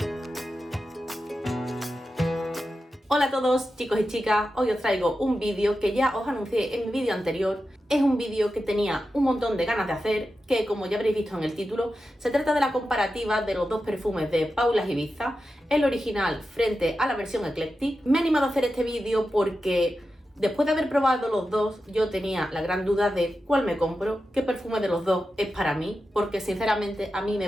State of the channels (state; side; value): normal; both; correlation 0.91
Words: Hola a todos chicos y chicas, hoy os traigo un vídeo que ya os anuncié en mi vídeo anterior. Es un vídeo que tenía un montón de ganas de hacer, que como ya habréis visto en el título, se trata de la comparativa de los dos perfumes de Paula Ibiza, el original frente a la versión Eclectic. Me he animado a hacer este vídeo porque después de haber probado los dos, yo tenía la gran duda de cuál me compro, qué perfume de los dos es para mí, porque sinceramente a mí me